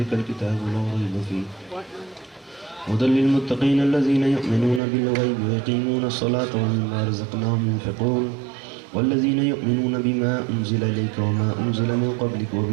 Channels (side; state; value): left; drops out; at 4.8 s